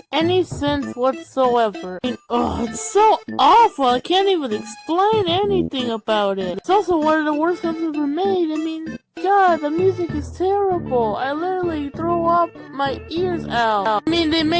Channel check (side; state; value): both; identical; correlation 1.00